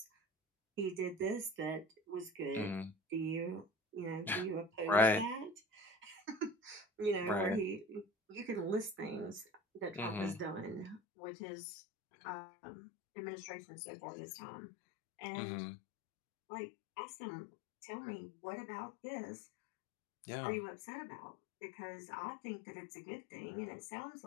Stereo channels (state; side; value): drops out; right; at 11.0 s